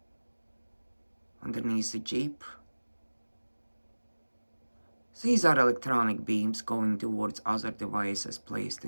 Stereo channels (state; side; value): inverted; both; correlation -1.00